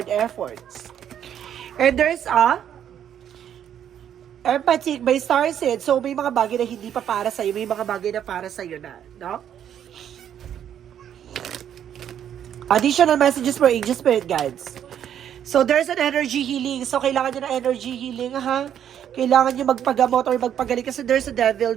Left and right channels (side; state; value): left; quieter; 9.6 dB